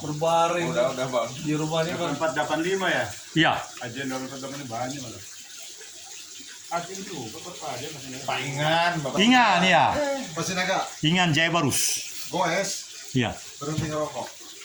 berbaring Udah Bang. di rumahnya kan 485 ya. Iya. Ajen 485 banyak malah. Ajen juga Pak Ajen masih. Paingan, Bapak. Ingan ya. Masih naga. Ingan Jaya Barus. Goes Iya. berhenti ngerokok.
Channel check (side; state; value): both; identical; correlation 1.00